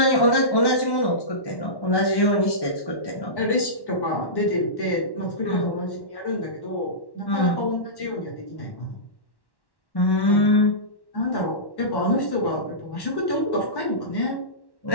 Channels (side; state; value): right; late; 1.1 ms